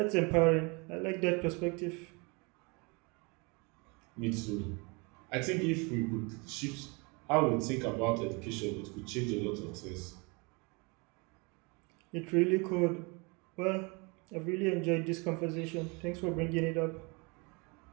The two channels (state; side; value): quieter; left; 29.8 dB